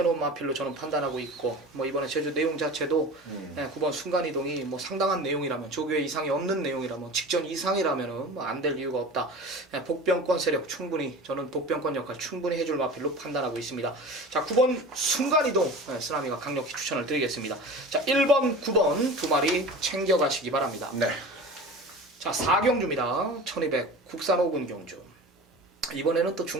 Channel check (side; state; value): both; normal; correlation 0.35